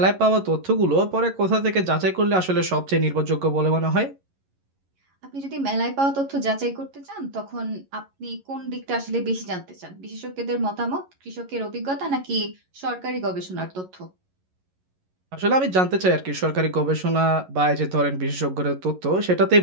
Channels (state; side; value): late; left; 11 ms